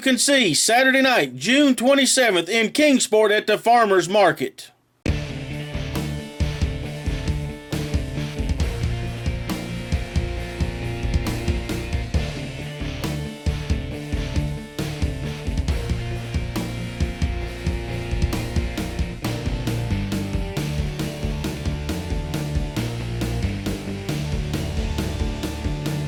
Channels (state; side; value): identical; both; correlation 1.00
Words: see Saturday night, June 27th in Kingsport at the Farmers Market.